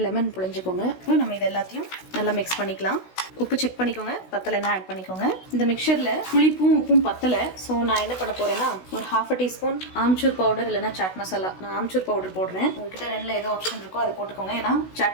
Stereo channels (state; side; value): late; right; 16 ms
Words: லெமன் புழிஞ்சுக்கோங்க. நம்ம இது எல்லாத்தையும் நல்லா மிக்ஸ் பண்ணிக்கலாம். உப்பு செக் பண்ணிக்கோங்க, பத்தலைன்னா ஆட் பண்ணிக்கோங்க. இந்த மிக்சரில் புளிப்பும் உப்பும் பத்தலை. ஸோ நான் என்ன பண்ண போகிறேன்னா ஒரு 1/2 டீஸ்பூன் ஆம்ச்சூர் பவுடர் இல்லைன்னா சாட் மசாலா. நான் ஆம்ச்சூர் பவுடர் போடுறேன். உங்ககிட்ட 2ல் ஏதோ ஆப்ஷன் இருக்கோ அதை போட்டுக்கோங்க. ஏன்னா